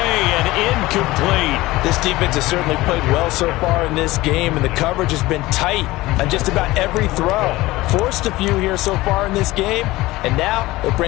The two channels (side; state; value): right; quieter; 18.9 dB